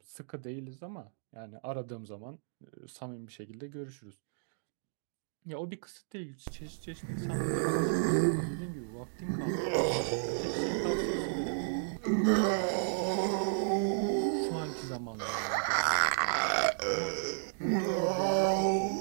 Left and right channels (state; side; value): silent; left; digital silence